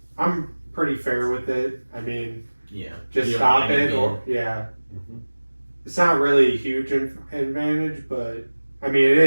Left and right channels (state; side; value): inverted; both; correlation -1.00